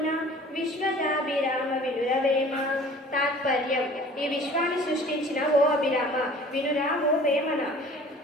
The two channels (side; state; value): both; normal; correlation 0.47